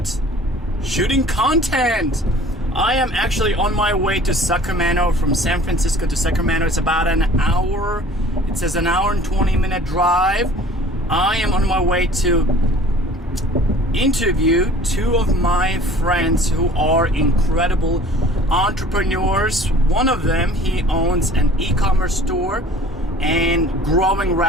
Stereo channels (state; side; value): normal; both; correlation 0.48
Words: shooting content. I am actually on my way to Sacramento. From San Francisco to Sacramento, it's about an hour. It says an hour and 20-minute drive. I am on my way to interview two of my friends who are incredible entrepreneurs. One of them, he owns an e-commerce store and growing